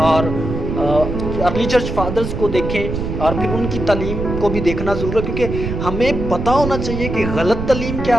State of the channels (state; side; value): noise; right; rumble, 4 dB below the sound